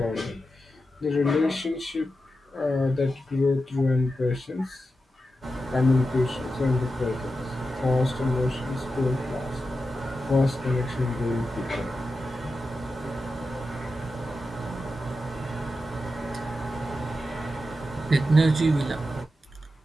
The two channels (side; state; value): both; normal; correlation 0.90